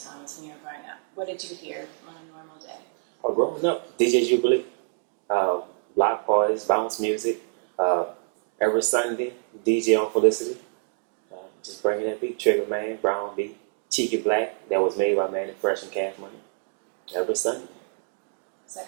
when you were growing up. What did you hear on a normal day? Well, growing up, DJ Jubilee, block parties, bounce music, every Sunday, DJ on Felicity, just bringing that beat, Trigger Man, Brown Beat, Cheeky Black, that was made by Manny Fresh and Cash Money, every Sunday.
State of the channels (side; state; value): left; silent; digital silence